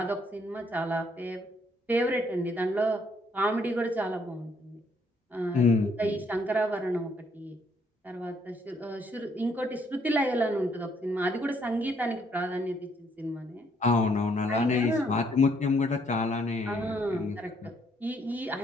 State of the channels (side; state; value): both; normal; correlation 0.69